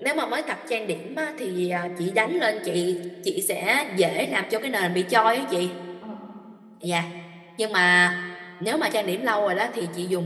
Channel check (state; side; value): identical; both; correlation 1.00